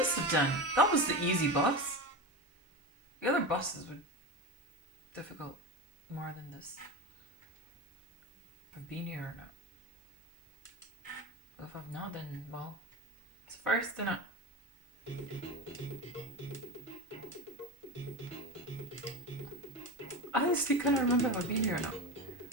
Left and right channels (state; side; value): normal; both; correlation 0.23